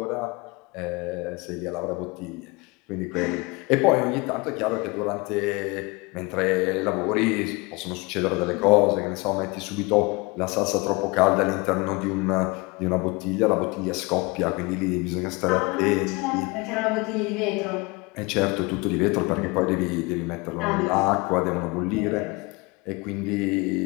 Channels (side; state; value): right; quieter; 25.7 dB